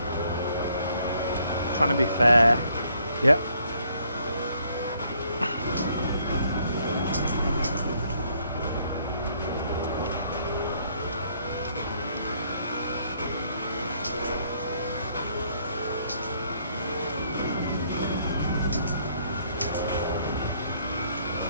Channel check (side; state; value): both; inverted; correlation -0.68